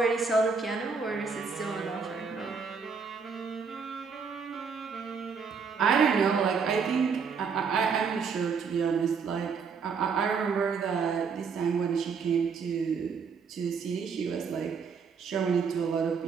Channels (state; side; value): quieter; left; 5.6 dB